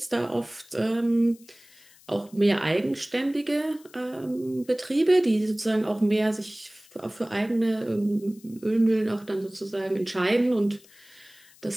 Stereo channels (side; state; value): left; noise; hiss, 26 dB below the sound